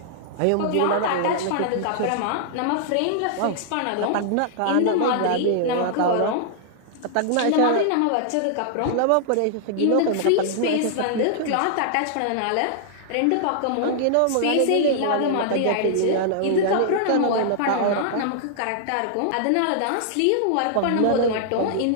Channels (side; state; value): both; different; correlation -0.01